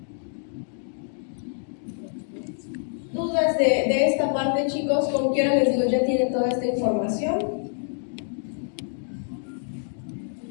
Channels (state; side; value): silent; right; 61 dB below the other